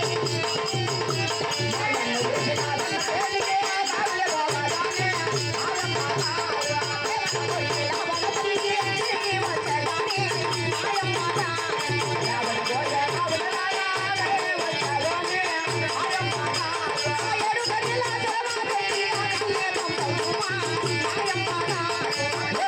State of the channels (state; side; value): identical; both; correlation 1.00